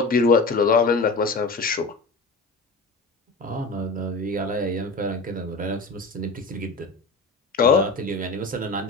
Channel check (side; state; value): right; quieter; 3.4 dB